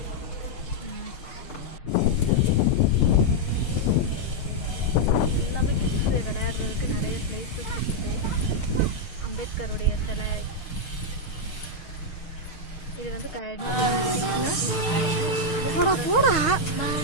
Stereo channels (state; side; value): late; right; 6.5 ms